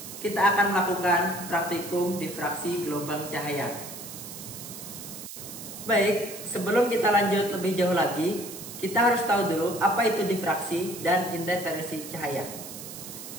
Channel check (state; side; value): noise; right; hiss, 11 dB below the sound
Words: kita akan melakukan praktikum difraksi gelombang cahaya. Baik, sebelum kita lanjut lebih jauh lagi, kita harus tahu dulu apa itu difraksi dan interferensi cahaya.